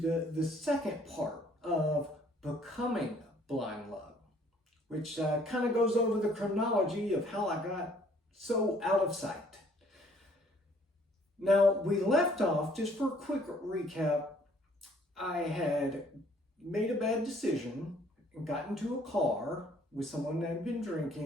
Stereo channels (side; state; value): both; normal; correlation 0.60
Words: second part of becoming Blind Luck, which kind of goes over the chronology of how I got so out of sight. Now, we left off, just for a quick recap, I had made a bad decision and got into a car with someone that had been